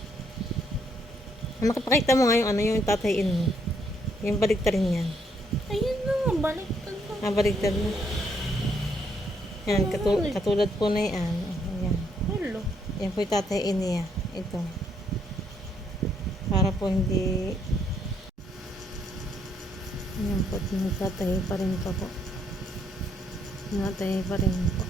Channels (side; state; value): both; normal; correlation 0.72